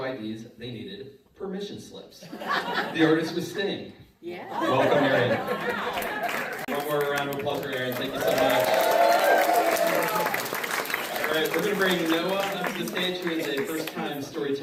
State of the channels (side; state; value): both; identical; correlation 1.00